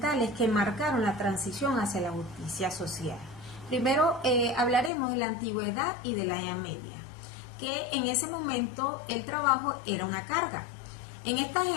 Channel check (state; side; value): drops out; right; at 4.9 s